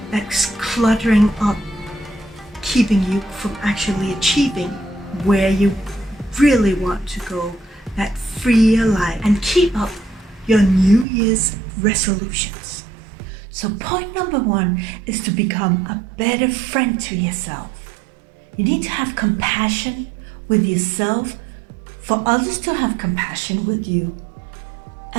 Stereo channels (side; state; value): left; drops out; at 11.1 s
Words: that's cluttering up, keeping you from actually achieving where you really want to go, that freer life, and keep up your New Year's resolutions. So point number 1 is to become a better friend to yourself. You need to have compassion with yourself for others to have compassion with you,